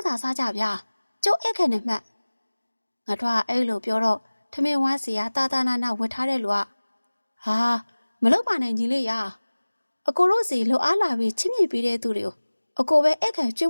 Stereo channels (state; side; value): inverted; both; correlation -1.00